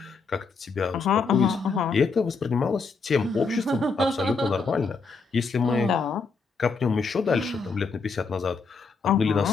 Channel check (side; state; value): right; quieter; 4.6 dB